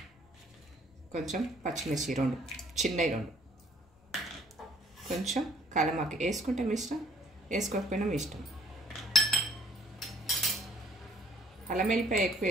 కొంచెం పచ్చిమిర్చి 2 చిన్నవి 2, కొంచెం కలమాకి వేసుకుంటే మీ ఇష్టం, వేసుకోకపోయినా మీ ఇష్టం. అల్లం వెల్లిపాయ ఎక్కువ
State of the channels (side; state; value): left; noise; rumble, 30 dB below the sound